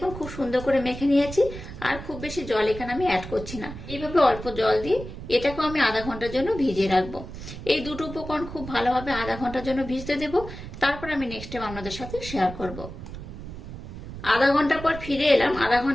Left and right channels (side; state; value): right; noise; rumble, 11 dB below the sound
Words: খুব সুন্দর করে মেখে নিয়েছি, আর খুব বেশি জল এখানে আমি অ্যাড করছি না। এইভাবে অল্প জল দিয়ে এটাকেও আমি আধা ঘন্টার জন্য ভিজিয়ে রাখবো। এই দুটো উপকরণ খুব ভালোভাবে আধা ঘন্টার জন্য ভিজতে দেবো। তারপর আমি নেক্সট টাইম আপনাদের সাথে শেয়ার করব। আধা ঘন্টা পর ফিরে এলাম। আধা